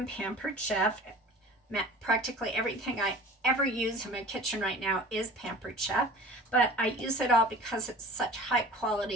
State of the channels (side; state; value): both; normal; correlation 0.43